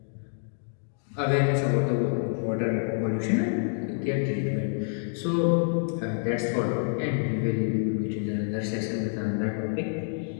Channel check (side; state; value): right; silent; digital silence